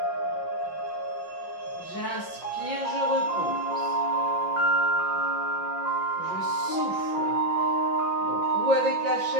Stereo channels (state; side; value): late; right; 5.7 ms